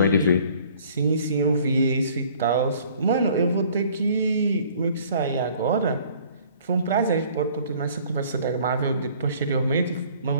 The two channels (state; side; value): inverted; both; correlation -0.55